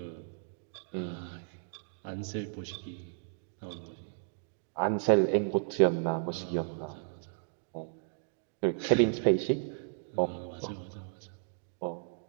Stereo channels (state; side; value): silent; left; digital silence